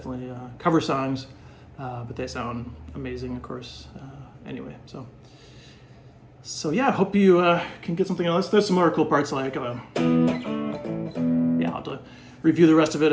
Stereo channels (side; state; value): both; identical; correlation 1.00